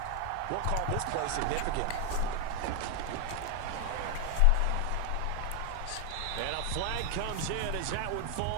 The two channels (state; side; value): different; both; correlation 0.00